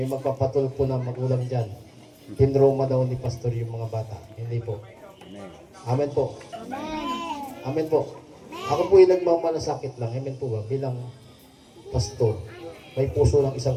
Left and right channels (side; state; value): both; identical; correlation 1.00